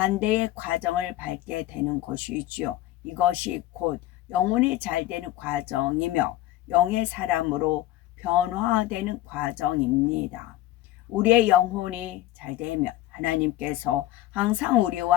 과정을 밟게 되는 것이지요. 이것이 곧 영혼이 잘 되는 과정이며 영의 사람으로 변화되는 과정입니다. 우리의 영혼이 잘 되면 하나님께서 항상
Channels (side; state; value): right; quieter; 14.9 dB